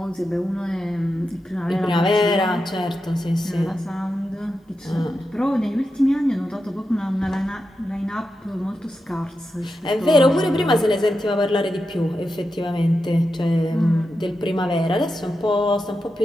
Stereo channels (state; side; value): normal; both; correlation 0.89